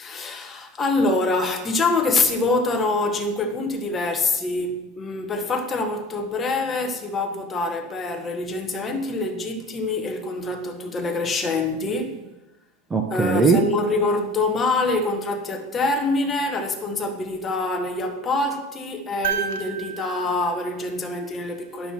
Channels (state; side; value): normal; both; correlation 0.44